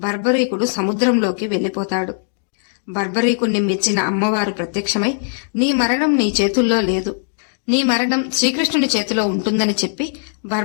బర్బరీకుడు సముద్రంలోకి వెళ్లిపోతాడు. బర్బరీకుణ్ణి మెచ్చిన అమ్మవారు ప్రత్యక్షమై, నీ మరణం నీ చేతుల్లో లేదు, నీ మరణం శ్రీకృష్ణుడి చేతిలో ఉంటుందని చెప్పి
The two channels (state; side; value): silent; right; digital silence